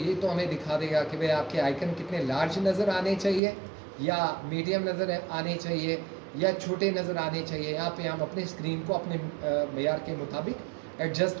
तो हमें दिखा देगा कि भाई आपके आइकन कितने लार्ज नज़र आने चाहिए या मीडियम नज़र आने चाहिए या छोटे नज़र आने चाहिए यहाँ पे हम अपने स्क्रीन को अपने मेयार के मुताबिक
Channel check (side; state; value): left; drops out; at 3.4 s